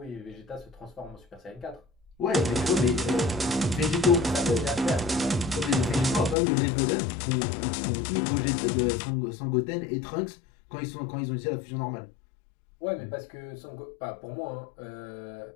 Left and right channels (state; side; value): drops out; right; at 6.4 s